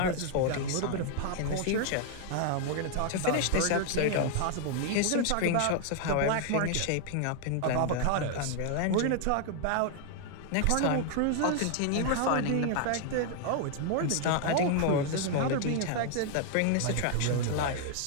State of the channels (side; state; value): both; different; correlation 0.00